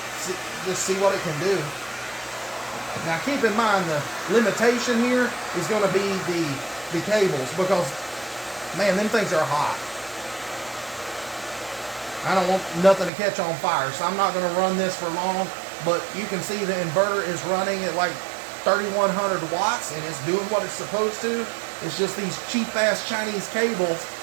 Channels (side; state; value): left; drops out; at 13.1 s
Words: just see what it can do. Now keep in mind, the limitation here is going to be the cables, because man, them things are hot. I don't want nothing to catch on fire, so I'm not going to run this for long. But you can see the inverter is running at like 3,100 watts, and it's doing what it's supposed to. It's just these cheap ass Chinese cables